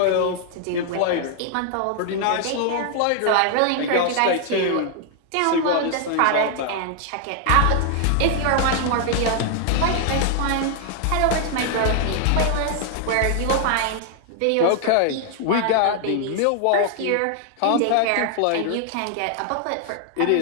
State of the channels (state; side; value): different; both; correlation 0.00